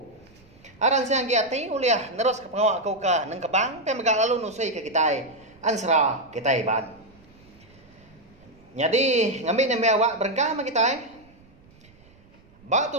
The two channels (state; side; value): noise; right; rumble, 28 dB below the sound